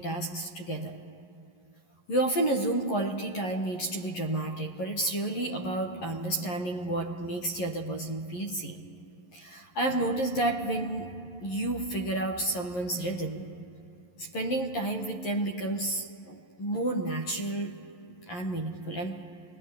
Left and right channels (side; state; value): right; late; 11 ms